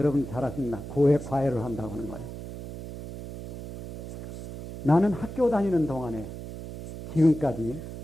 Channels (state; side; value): noise; right; hum, 10 dB below the sound